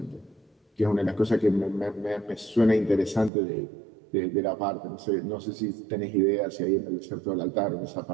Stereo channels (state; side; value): drops out; left; at 3.3 s